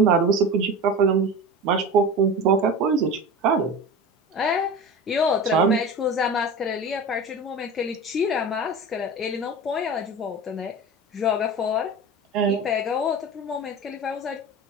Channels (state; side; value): normal; both; correlation 0.31